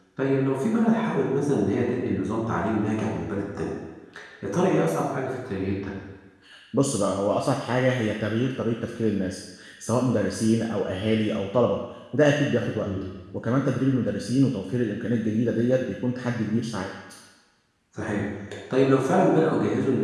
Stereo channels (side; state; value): both; identical; correlation 1.00